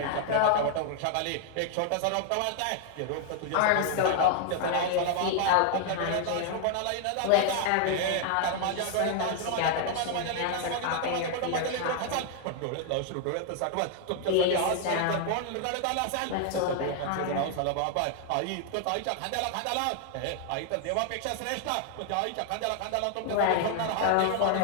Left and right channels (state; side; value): different; both; correlation 0.00